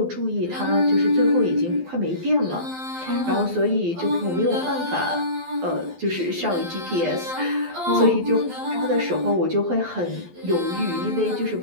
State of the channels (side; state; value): left; late; 12 ms